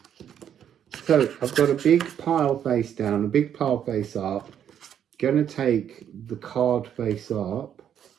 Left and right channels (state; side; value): quieter; left; 9.3 dB